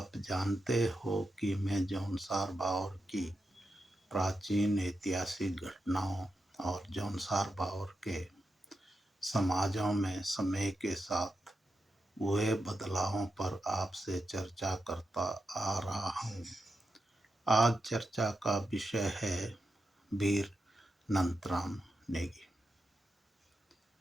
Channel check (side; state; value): both; normal; correlation 0.87